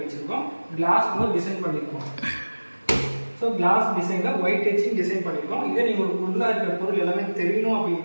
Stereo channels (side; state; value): both; inverted; correlation -1.00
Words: வச்சுருக்கோம். கிளாஸ் வந்து டிசைன் பண்ணியிருக்கோம். ஸோ கிளாஸ் டிசைனில் ஒயிட் டச்சிங் டிசைன் பண்ணியிருக்கோம். இதே நீங்கள் ஒரு ஃபுல்லாக இருக்கிற பொருள் எல்லாமே தெரியணும்